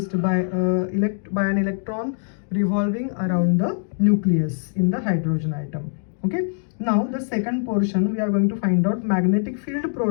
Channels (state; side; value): silent; right; digital silence